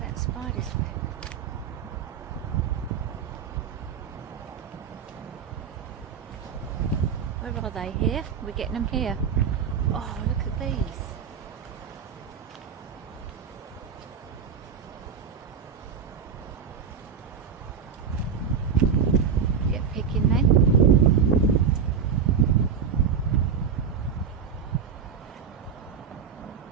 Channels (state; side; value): quieter; left; 6.7 dB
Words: that spider's web. Where are they? Here? We're getting them here. Oh, look at these. Get picking then.